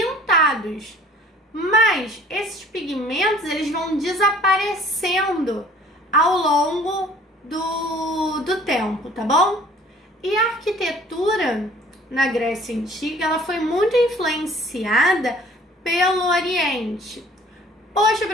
Mas esses pigmentos, eles vão desaparecendo ao longo do tempo, tá bom? E a arquitetura na Grécia Antiga, ela foi muito influenciada pelo Oriente. Poxa,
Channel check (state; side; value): normal; both; correlation 0.53